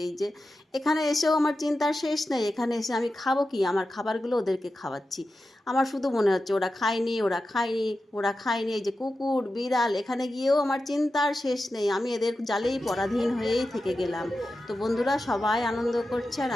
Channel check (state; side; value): normal; both; correlation 0.92